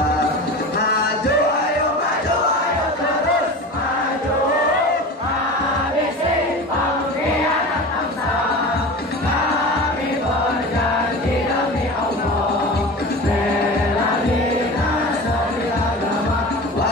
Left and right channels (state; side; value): normal; both; correlation 0.32